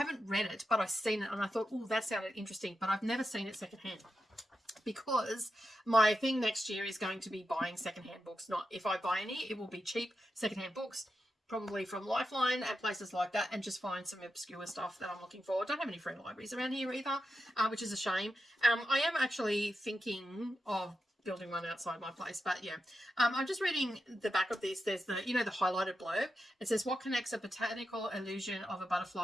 read it, but I've seen it, and I thought, oh, that sounded interesting, but I've never seen it secondhand, because my thing next year is going to be buying secondhand books. Not if I buy any, it will be cheap secondhand books, probably from Lifeline and places like that, and just find some obscure stuff that I'm looking for. I don't have any free libraries around here either, which is a shame. I am actually thinking of building one outside my place, but yeah, I'm just reading the back of this. There's the, you know, the highlighted blurb. It says, what connects a botanical illusion of a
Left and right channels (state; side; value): normal; both; correlation 0.88